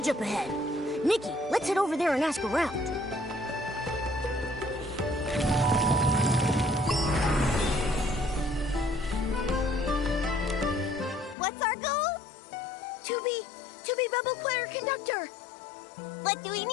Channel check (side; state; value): right; drops out; at 11.4 s